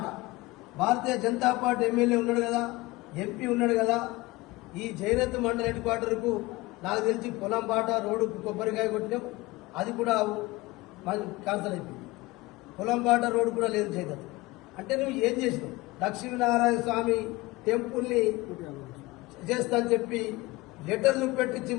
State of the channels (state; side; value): quieter; right; 21.1 dB